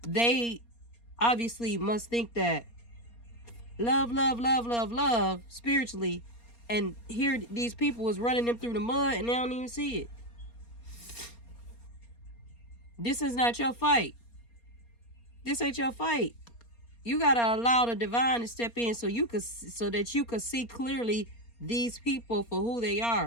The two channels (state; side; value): late; right; 4.3 ms